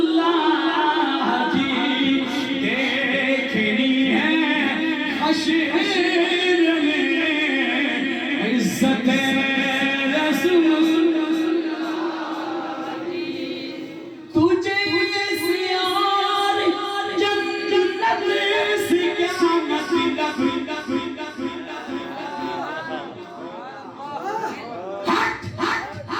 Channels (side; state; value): both; identical; correlation 1.00